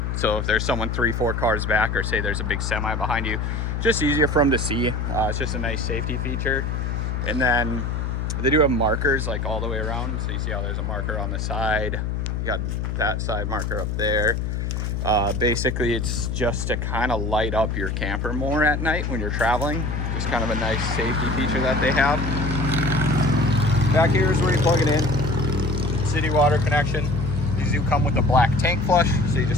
So if there's someone 3-4 cars back, or say there's a big semi behind you, just easier for them to see. It's just a nice safety feature. And then they do have markers like all the way around. So you see how there's a marker on the side. You got that side marker up there. Basically it's just to kind of light up your camper more at night when you're traveling. Just kind of a nice safety feature that they have. Back here is where you plug it in. City water connection. These do come with a black tank flush, so you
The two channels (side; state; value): left; noise; hum, 1 dB below the sound